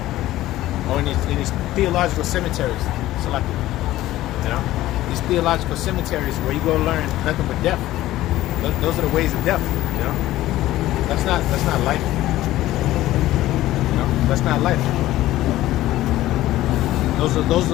or in these theological cemeteries. So like, you know, these theological cemeteries where you go learn nothing but death. Those are the ways of death, you know. That's not life. You know, that's not life. Those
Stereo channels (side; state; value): right; quieter; 15.4 dB